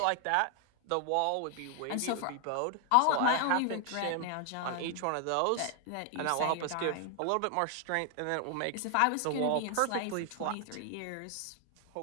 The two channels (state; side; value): different; both; correlation 0.00